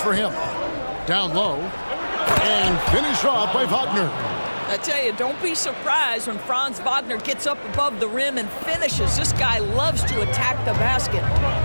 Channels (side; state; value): both; inverted; correlation -1.00